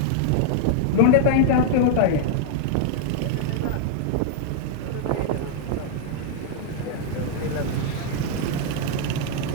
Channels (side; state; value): both; different; correlation -0.01